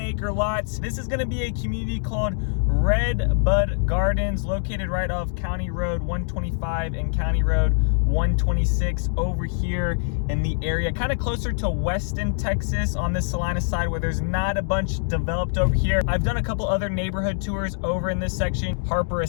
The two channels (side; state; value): right; silent; digital silence